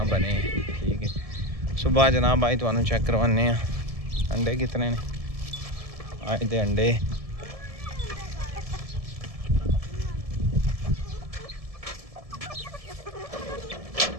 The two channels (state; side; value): late; left; 1.7 ms